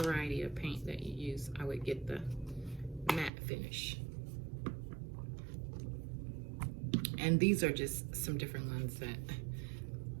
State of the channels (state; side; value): drops out; left; at 3.3 s